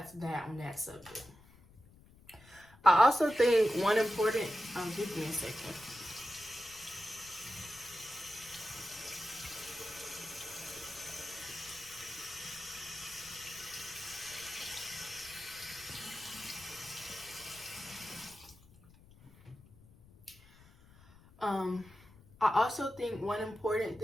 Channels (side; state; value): left; noise; rumble, 24 dB below the sound